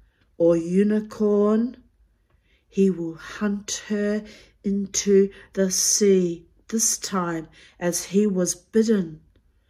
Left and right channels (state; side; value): identical; both; correlation 1.00